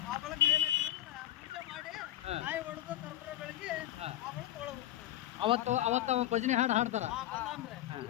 ಅವತ್ತು ಭಜನೆ ಹಾಡು ಹಾಡ್ತಾರ.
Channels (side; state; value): right; quieter; 13.5 dB